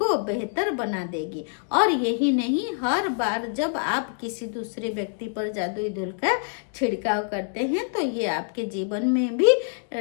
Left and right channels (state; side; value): silent; right; digital silence